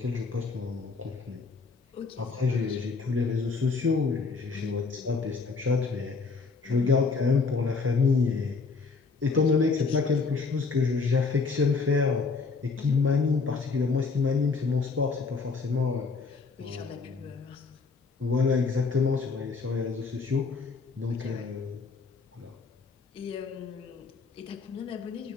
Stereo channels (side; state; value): right; quieter; 4.5 dB